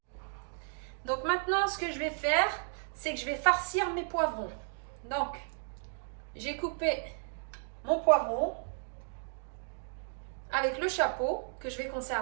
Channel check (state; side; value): silent; left; 55 dB below the other